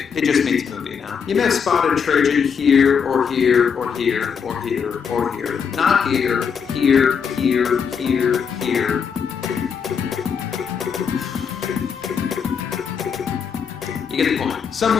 it just means movie now. You may have spotted Trajan here, or here, or here, or here, or here. Not here, here, here, here, here. You get the point.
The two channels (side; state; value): right; quieter; 6.7 dB